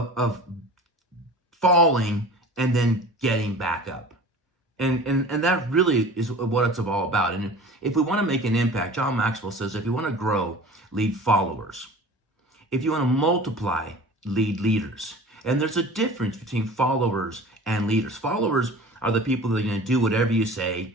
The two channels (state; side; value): normal; both; correlation 0.40